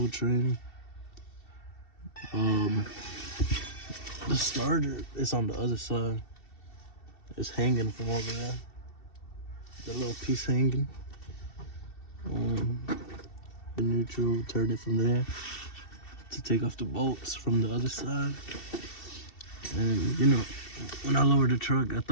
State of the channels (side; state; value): right; late; 2.7 ms